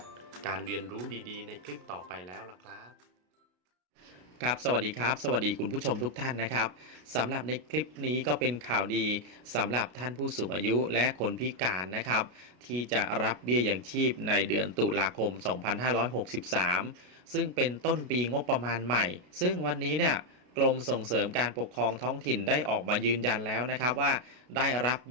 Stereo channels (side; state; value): left; late; 33 ms